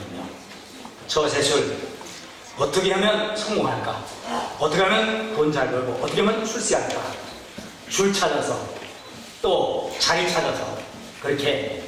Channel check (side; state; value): both; identical; correlation 1.00